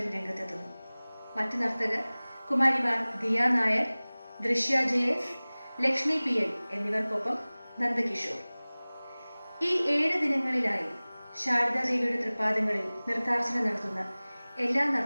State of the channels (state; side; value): inverted; both; correlation -1.00